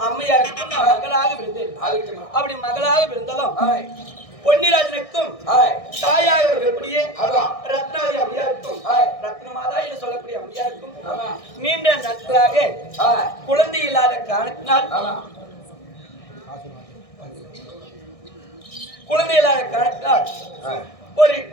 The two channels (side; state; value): right; late; 1.6 ms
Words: அம்மையாருக்கும் நான் மகளாக விழுந்தேன். அப்படி மகளாக விழுந்ததும் பொன்னிராஜனுக்கும் தாயாக இருக்கக்கூடிய ரத்னாதி அம்மையாருக்கும் ரத்னமாதா என்று சொல்லக்கூடிய அம்மையாருக்கும் நீண்ட நாட்களாக குழந்தை இல்லாத காரணத்தினால் குழந்தை இல்லாத காரணத்தினால் ஒரு